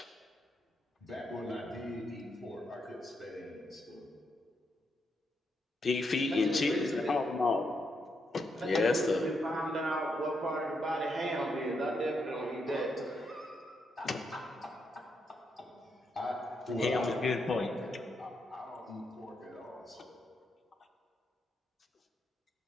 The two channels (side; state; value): both; normal; correlation 0.80